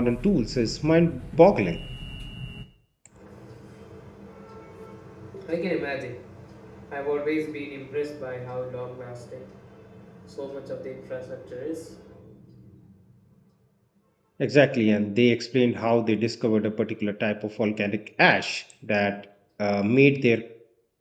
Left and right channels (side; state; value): both; identical; correlation 1.00